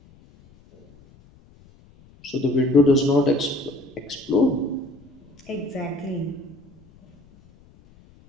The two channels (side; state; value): left; noise; rumble, 27 dB below the sound